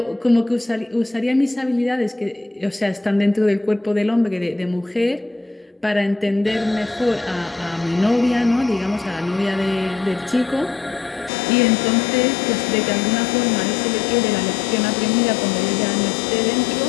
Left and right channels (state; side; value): drops out; right; at 11.3 s